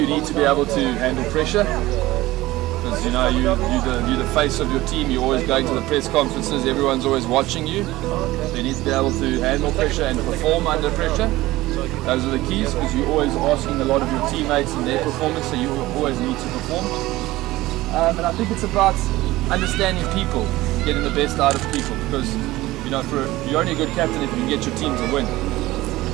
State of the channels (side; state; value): left; quieter; 17.9 dB